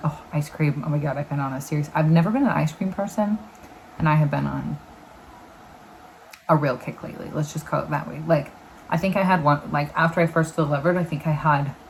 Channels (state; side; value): identical; both; correlation 1.00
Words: ice cream. Oh my God, I've been on a series. I've never been an ice cream person, and I have been on a real kick lately. Let's just call it that way. Like, I think I had one, like after I first delivered, I think